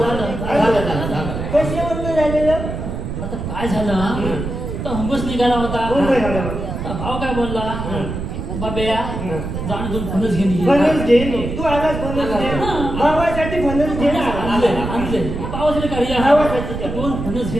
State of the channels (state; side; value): noise; right; rumble, 5 dB below the sound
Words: कशावर झालेलं आता काय झालं तर हुंबस निघाला होता भाव काय बोलला बाब्या जाण दोन फणस घेऊन ये. फणस घे नी. तू आलास फणस घे. भावासाठी फणस घे ना. आणले पावसाला काढी भावासाठी दोन फणस